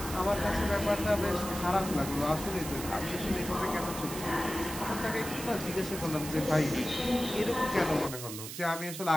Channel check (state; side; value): noise; right; hiss, 9 dB below the sound